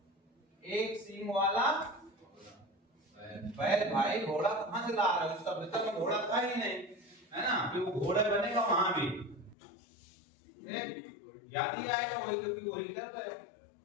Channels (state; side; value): drops out; right; at 9.6 s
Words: एक सिंह वाला बैल भाई घोड़ा कहाँ से ला रहा है, उस सभ्यता में घोड़ा था ही नहीं, है ना, कि वो घोड़ा बनेगा वहां भी, याद ही आएगा वही, क्योंकि वही कर रहे हैं।